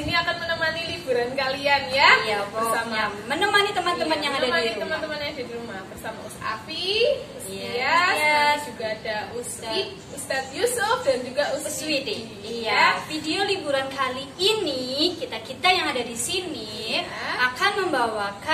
akan menemani liburan kalian ya. Iya, bersama menemani teman-teman yang ada di rumah. Teman-teman yang ada di rumah bersama Afi, Ustias, juga ada Ustadz Yusuf dan juga Uswiti. Iya, video liburan kali ini kita yang ada di sini akan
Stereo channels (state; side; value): identical; both; correlation 1.00